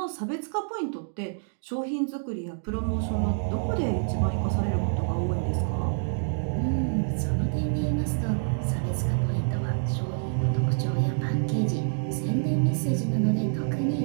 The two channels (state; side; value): silent; left; digital silence